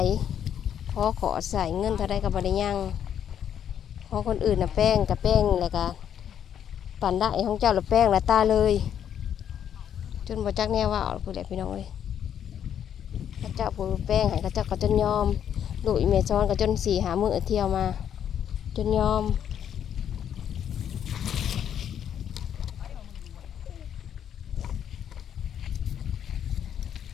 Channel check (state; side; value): quieter; right; 9.2 dB